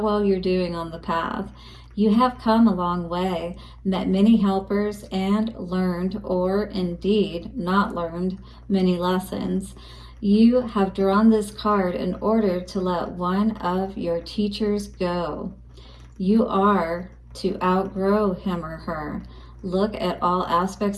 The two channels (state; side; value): identical; both; correlation 1.00